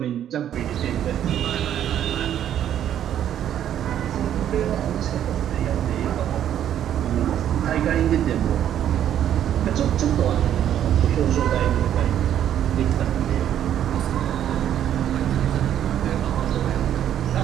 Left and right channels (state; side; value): quieter; left; 10.5 dB